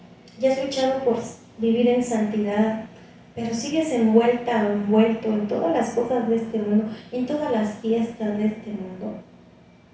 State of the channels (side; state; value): both; identical; correlation 1.00